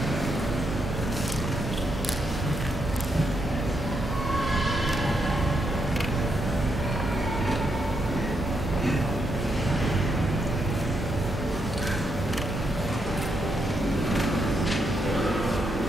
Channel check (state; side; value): normal; both; correlation 0.79